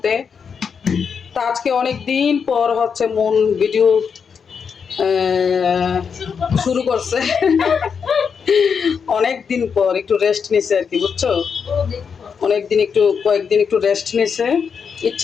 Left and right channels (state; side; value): quieter; right; 6.3 dB